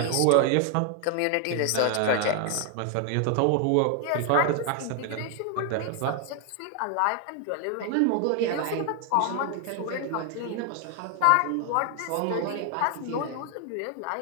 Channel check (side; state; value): both; different; correlation 0.00